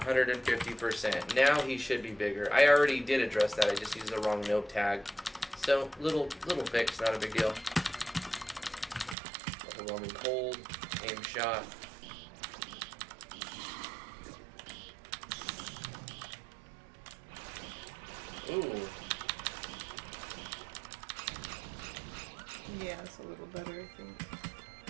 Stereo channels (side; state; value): left; drops out; at 9.2 s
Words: Now he should be bigger. I already did address that. I just used the wrong note tag. So little fix, not a big deal. Overwhelming cold, aim shot. Ooh. Yeah, it's a little better, I think.